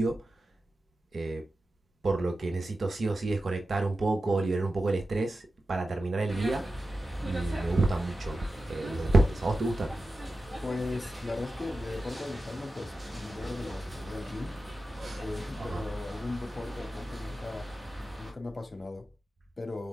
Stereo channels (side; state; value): both; normal; correlation 0.93